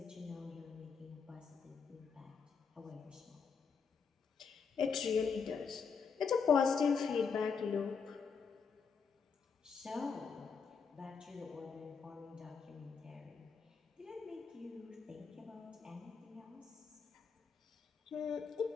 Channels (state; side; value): quieter; right; 5.8 dB